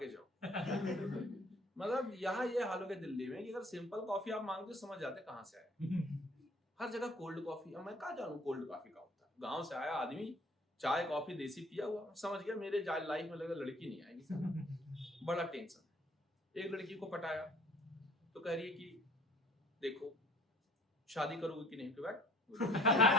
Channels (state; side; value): normal; both; correlation 0.52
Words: जाओ। मतलब यहाँ ये हाल हो गया दिल्ली में कि अगर सिंपल कॉफी आप मांगते समझ जाते कहाँ से आया, हर जगह कोल्ड कॉफी। अब मैं कहाँ जानू कोल्ड कॉफी का होता है, गाँव से आया आदमी, चाय कॉफी देसी पिया हुआ, समझ गया मेरे लाइफ में लगा लड़की नहीं आएगी साला। बड़ा टेंशन। एक लड़की को पटाया तो कह रही है कि देखो शादी करोगे कि नहीं,